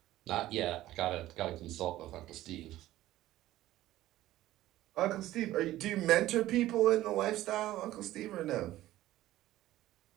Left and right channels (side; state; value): left; quieter; 15.1 dB